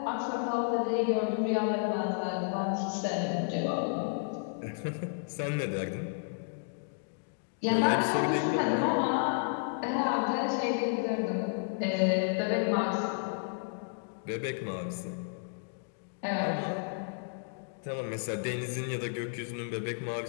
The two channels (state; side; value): silent; right; digital silence